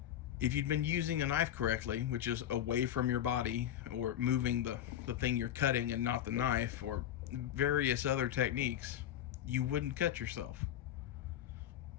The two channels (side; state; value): right; quieter; 11.1 dB